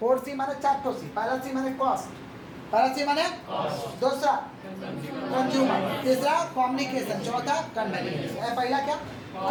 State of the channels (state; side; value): identical; both; correlation 1.00